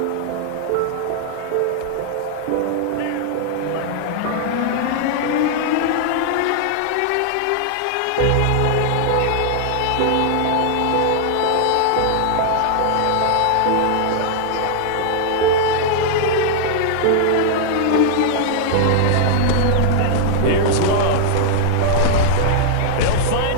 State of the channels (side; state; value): both; different; correlation -0.01